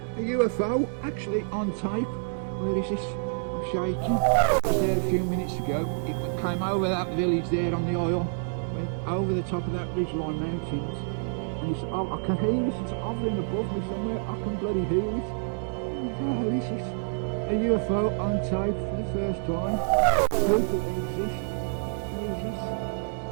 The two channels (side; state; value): left; silent; digital silence